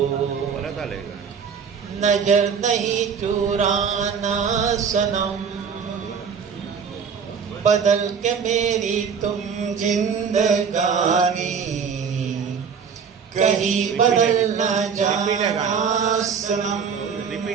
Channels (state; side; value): quieter; left; 6.5 dB